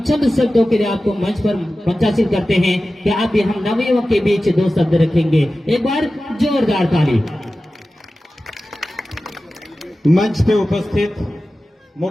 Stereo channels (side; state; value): both; normal; correlation 0.95